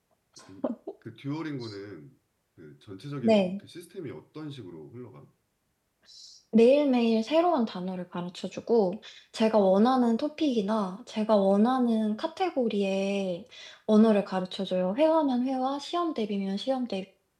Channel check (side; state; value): both; identical; correlation 1.00